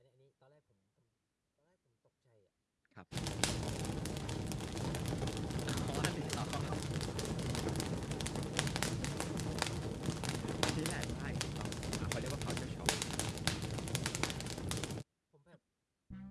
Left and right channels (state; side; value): identical; both; correlation 1.00